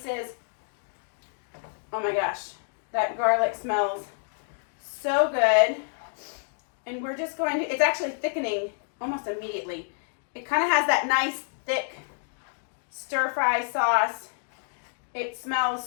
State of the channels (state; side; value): silent; right; digital silence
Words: Oh my gosh, that garlic smells so good. And we're just going to, it's actually thickening almost immediately. It kind of has that nice thick stir fry sauce. It